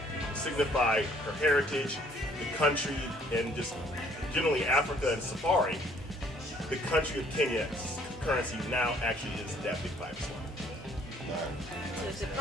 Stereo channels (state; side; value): normal; both; correlation 0.62